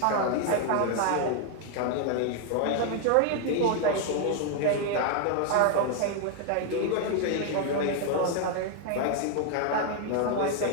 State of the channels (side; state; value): both; different; correlation 0.00